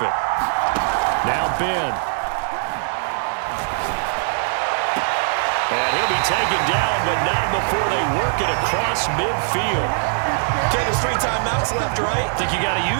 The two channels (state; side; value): silent; left; digital silence